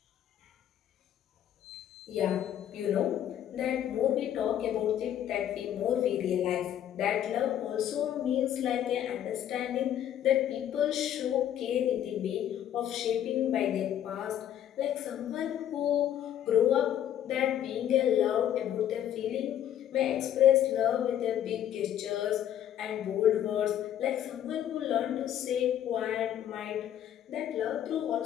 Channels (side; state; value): right; quieter; 10.7 dB